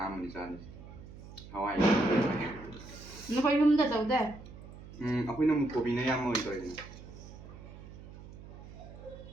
aman di sana. Hawaii. Nó phải yum da tawde. Aku ini mau kopi nih yang mau itu ini.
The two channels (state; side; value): noise; right; hum, 16 dB below the sound